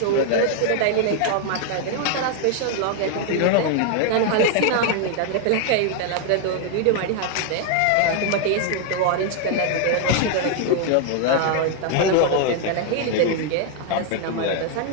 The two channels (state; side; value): different; both; correlation 0.00